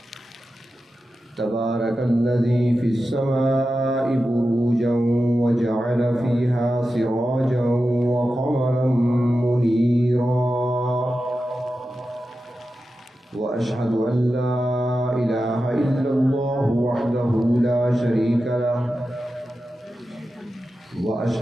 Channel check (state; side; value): normal; both; correlation 0.92